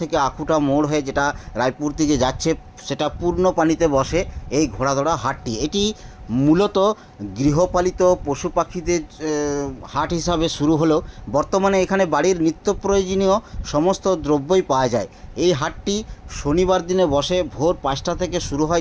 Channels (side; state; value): both; identical; correlation 1.00